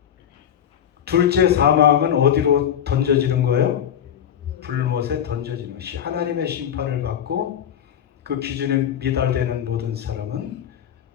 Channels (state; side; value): quieter; right; 9.4 dB